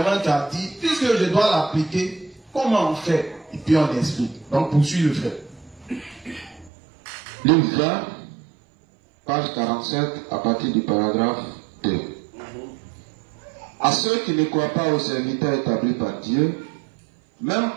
tu as dit, puisque je dois l'appliquer, comment on fait? Et puis on explique. Donc poursuis le frère. Livre 20, page 47, à partir du paragraphe 2. À ceux qui ne croient pas aux serviteurs établis par Dieu, même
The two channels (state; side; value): drops out; left; at 6.7 s